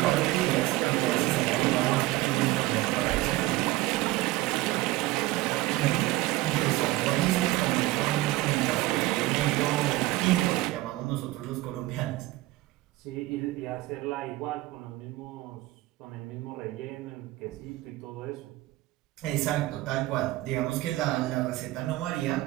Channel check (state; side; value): quieter; left; 18.2 dB